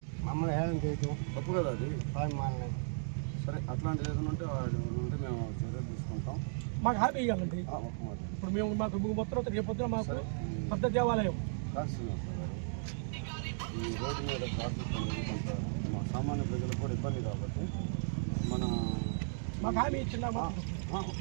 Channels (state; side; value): silent; left; digital silence